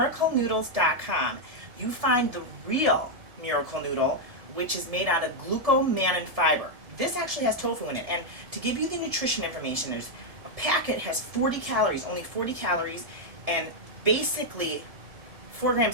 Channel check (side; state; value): left; late; 1.7 ms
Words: you find the real miracle noodle, which is made out of glucomannan fiber. This actually has tofu in it. And to give you the nutrition information, there's a packet has 40 calories, only 40 calories, and basically 4